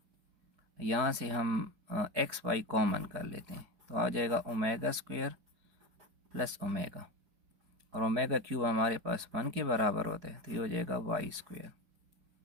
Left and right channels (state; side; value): late; left; 4.7 ms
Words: यहाँ से हम एक्स वाई कॉमन कर लेते हैं तो आ जाएगा ओमेगा स्क्वायर प्लस ओमेगा, और ओमेगा क्यूब हमारे पास 1 के बराबर होता है तो ये हो जाएगा y square.